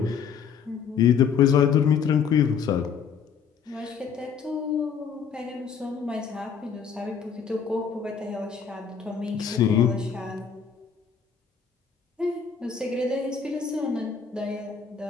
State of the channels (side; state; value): right; quieter; 6.7 dB